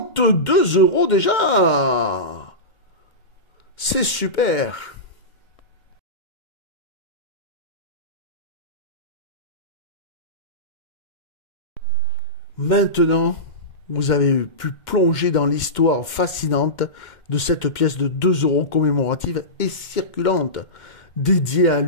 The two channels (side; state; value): right; late; 2.1 ms